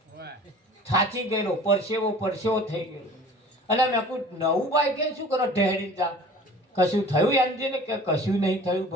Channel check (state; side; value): normal; both; correlation 0.45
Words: થાચી ગયેલો, પરસેવો થઈ ગયો. અને મેં કહું નવું બાઈક એ શું કરો ઢહેડી જા? કશું થયું એન્જિન કે કશું નહીં થયું